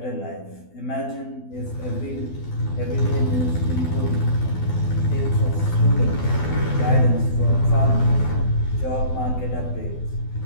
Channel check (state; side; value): late; right; 12 ms